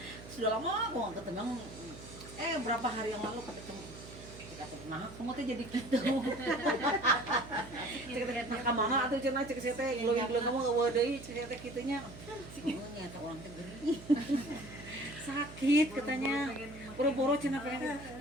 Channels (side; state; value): right; noise; hum, 15 dB below the sound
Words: sudah lama aku nggak ketemu, berapa hari yang lalu ketemu. Nah, kamu tuh jadi gitu. Cek mama atau cenah cek saya teh glowing kamu eueuh deui cek saya teh kitunya. Nyata orang teh geuring. Sakit katanya. Boro-boro cenah pengen.